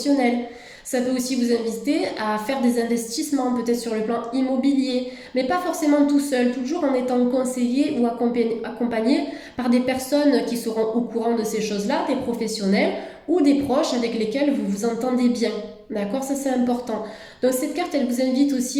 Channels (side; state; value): both; identical; correlation 1.00